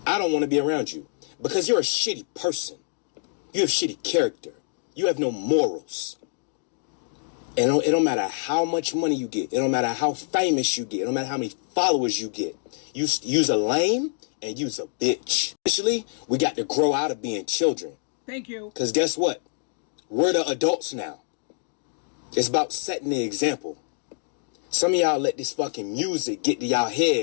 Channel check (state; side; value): silent; right; digital silence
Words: I don't want to be around you because you're a shitty person. You have shitty character. You have no morals. And it don't matter how much money you get. It don't matter how famous you get. It don't matter how many followers you get. You's a lame and you's a bitch. Initially, we got to grow out of being children. Thank you. Because guess what? We're the adults now. It's about setting the example. Some of y'all let this fucking music get to y'all